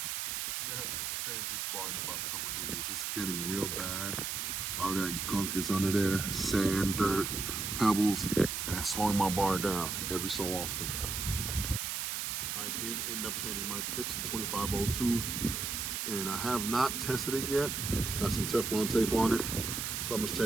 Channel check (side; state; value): right; noise; hiss, 2 dB below the sound